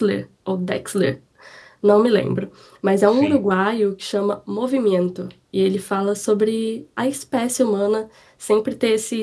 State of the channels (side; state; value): both; identical; correlation 1.00